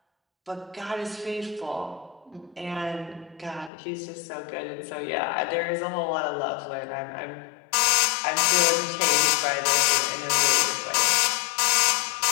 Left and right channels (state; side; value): drops out; right; at 3.7 s